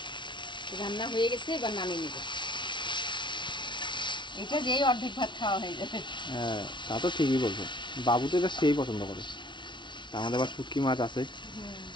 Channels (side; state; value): right; late; 0.23 ms